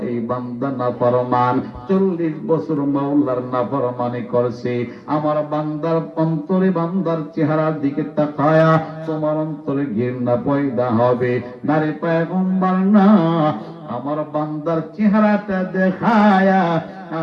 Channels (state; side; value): identical; both; correlation 1.00